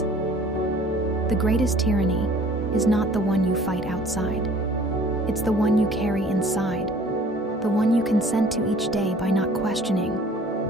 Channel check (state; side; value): normal; both; correlation 0.52